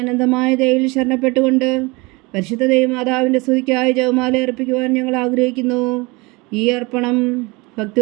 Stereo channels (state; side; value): quieter; left; 25.3 dB